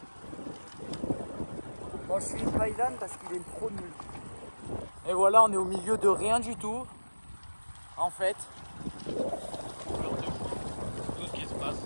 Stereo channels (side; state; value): both; inverted; correlation -1.00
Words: Bon, je suis pas Ilan parce qu'il est trop nul. Et voilà, on est au milieu de rien du tout. En fait. Tout ce qui se passe,